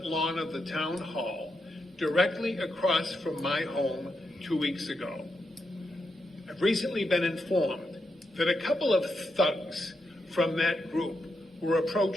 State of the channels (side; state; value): both; normal; correlation 0.84